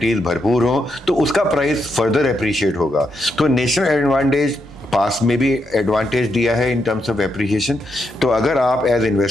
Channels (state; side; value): normal; both; correlation 0.81